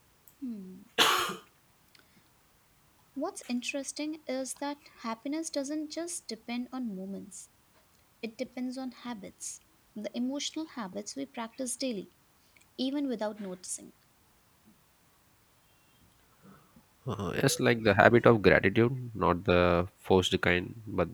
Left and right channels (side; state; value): both; identical; correlation 1.00